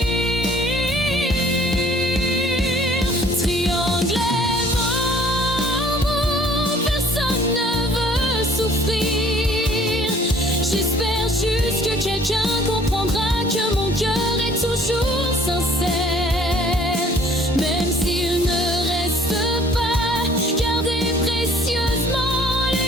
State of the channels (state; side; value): normal; both; correlation 0.56